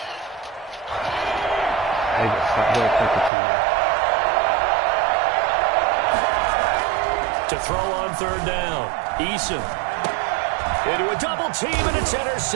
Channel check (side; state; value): left; drops out; at 3.3 s